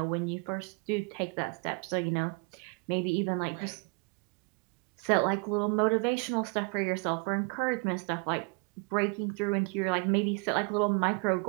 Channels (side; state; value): left; quieter; 32.0 dB